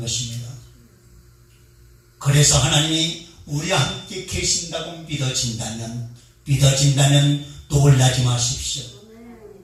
것입니다. 그래서 하나님이 우리와 함께 계신다고 믿어진다면 놀라지 마십시오.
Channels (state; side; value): identical; both; correlation 1.00